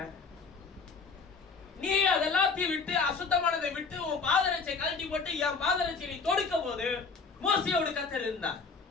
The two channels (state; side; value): quieter; right; 4.8 dB